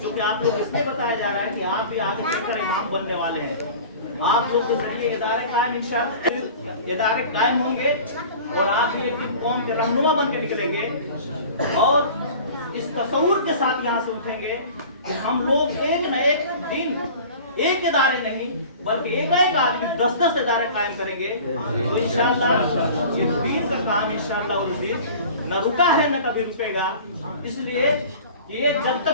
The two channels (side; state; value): both; inverted; correlation -0.42